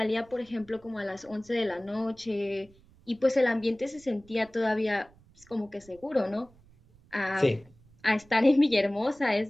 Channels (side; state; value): right; noise; rumble, 28 dB below the sound